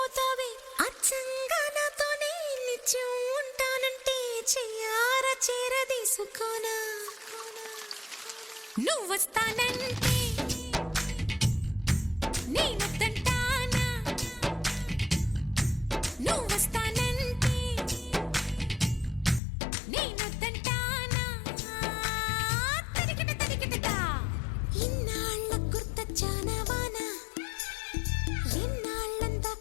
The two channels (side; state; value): right; drops out; at 19.4 s